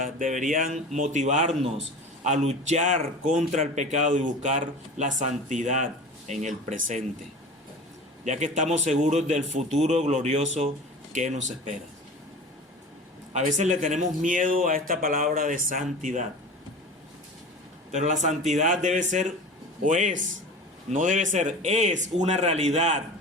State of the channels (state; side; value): normal; both; correlation 0.35